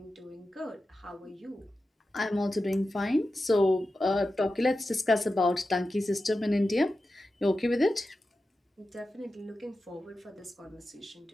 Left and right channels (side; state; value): both; normal; correlation 0.92